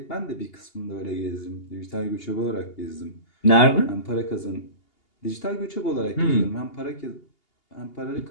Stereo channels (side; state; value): right; late; 2.8 ms